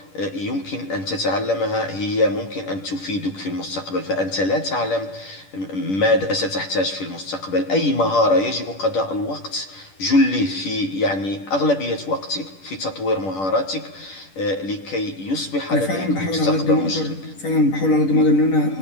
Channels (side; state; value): right; late; 10 ms